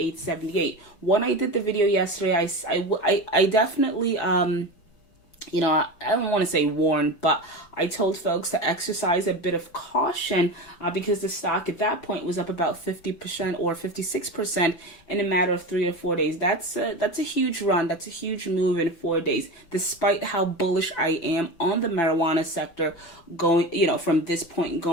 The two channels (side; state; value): right; late; 6.0 ms